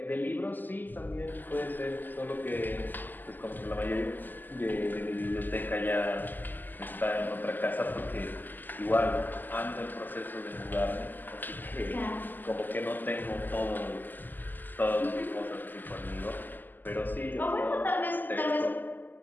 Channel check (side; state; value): right; late; 0.088 ms